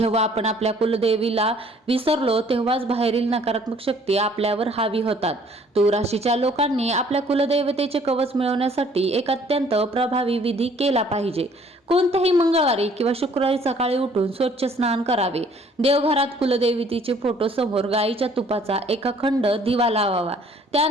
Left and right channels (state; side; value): normal; both; correlation 0.58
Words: आपण आपल्या कुलदेवीला विसरलो तेव्हाच बाहेरील नकारात्मक शक्ती आपल्यावर हावी होतात. तूळ राशीच्या लोकांनी आपल्या कुलदेवतेचे कवच मिळवण्यासाठी एक अत्यंत प्रभावी विधी केला पाहिजे. कोणत्याही मंगळवारी किंवा शुक्रवारी सकाळी उठून स्वच्छ स्नान करावे. देवघरात कुलदेवतेचे फोटो समोर गाईच्या तुपाचा एक अखंड दिवा लावावा.